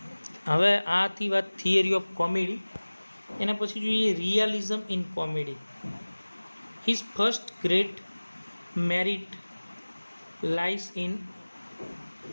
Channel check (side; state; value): both; inverted; correlation -1.00